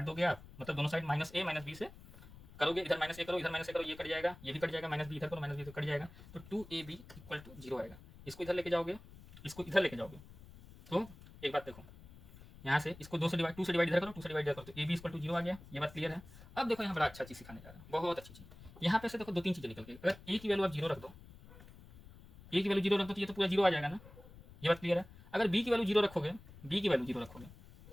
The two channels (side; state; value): left; noise; rumble, 19 dB below the sound